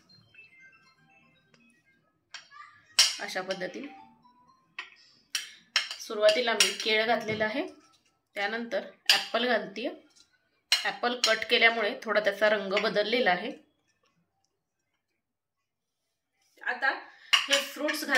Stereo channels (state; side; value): identical; both; correlation 1.00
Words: अशा पद्धतीने सुरुवातीला मी केळ घातलेलं आहे, त्यानंतर ऍपल घालतीये. ऍपल कट केल्यामुळे थोडा त्याचा रंग बदललेला आहे. आता हे फ्रुट्स